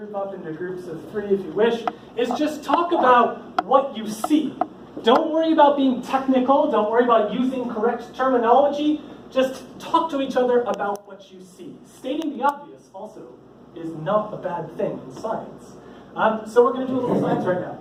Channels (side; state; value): both; identical; correlation 1.00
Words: up into groups of 3 if you wish, is just talk about what you see. Don't worry about being technical. Don't worry about using correct terminology. Just talk to each other about what you see. Stating the obvious also is not a bad thing in science. So we're going to do a little science right now.